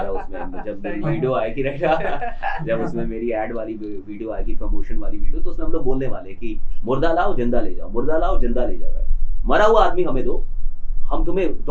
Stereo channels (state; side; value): identical; both; correlation 1.00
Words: उसमें जब वीडियो आएगी, राइट, जब उसमें मेरी ऐड वाली वीडियो आएगी, प्रमोशन वाली वीडियो, तो उसमें हम लोग बोलने वाले कि मुर्दा लाओ जिंदा ले जाओ, मुर्दा लाओ जिंदा ले जाओ, राइट। मरा हुआ आदमी हमें दो, हम तुम्हें